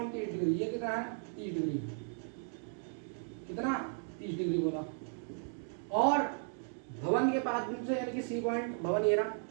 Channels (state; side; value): silent; left; 54 dB below the other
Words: 30 डिग्री। ये कितना है, 30 डिग्री। कितना, 30 डिग्री बोला। और भवन के पाद बिंदु से यानी कि सी पॉइंट, भवन ये रहा,